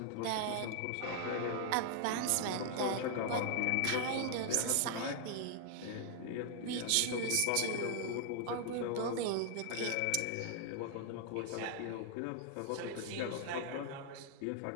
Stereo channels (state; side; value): different; both; correlation 0.00